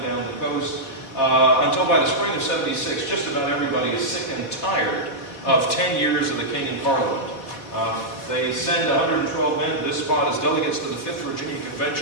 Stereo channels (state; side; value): late; right; 4.1 ms